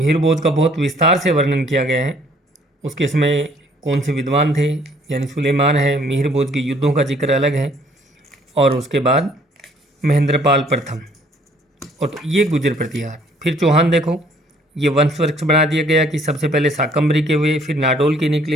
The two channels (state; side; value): normal; both; correlation 0.61